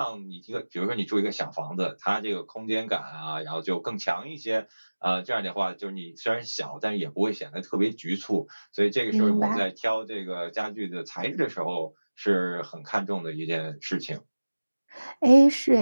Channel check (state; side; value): inverted; both; correlation -1.00